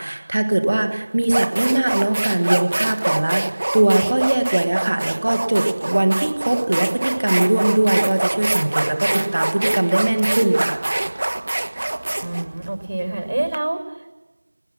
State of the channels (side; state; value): both; inverted; correlation -1.00